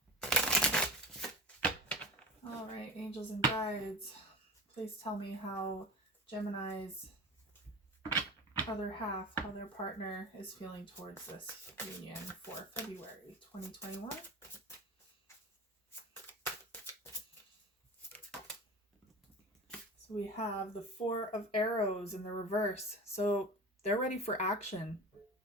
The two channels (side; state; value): both; normal; correlation 0.30